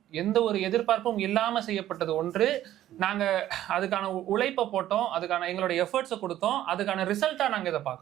எதிர்பார்ப்பும் இல்லாம செய்யப்பட்டது ஒன்று. நாங்க அதுக்கான உழைப்பை போட்டோம், அதுக்கான எங்களோட எஃபர்ட்ஸை கொடுத்தோம், அதுக்கான ரிசல்ட்டா நாங்க இதை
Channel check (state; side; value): quieter; left; 12.9 dB